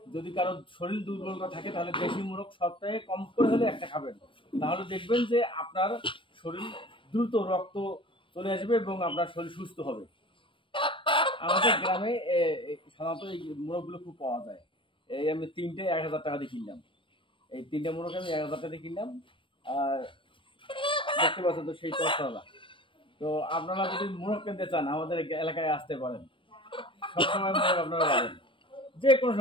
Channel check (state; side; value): late; right; 0.25 ms